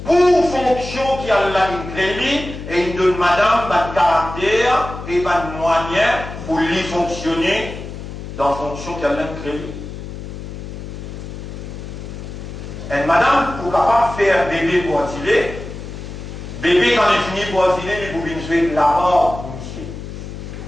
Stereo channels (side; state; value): left; noise; hum, 10 dB below the sound